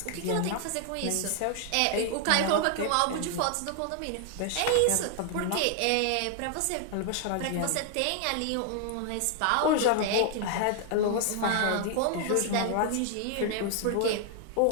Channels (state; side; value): different; both; correlation 0.00